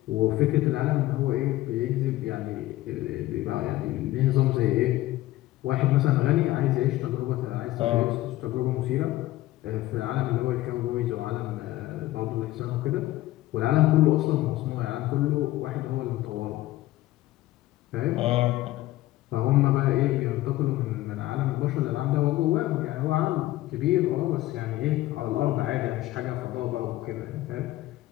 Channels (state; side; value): quieter; right; 16.4 dB